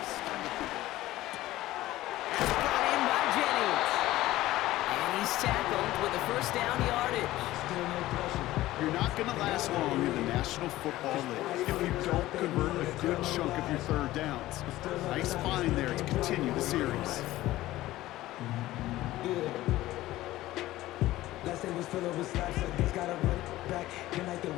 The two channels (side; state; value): right; quieter; 16.2 dB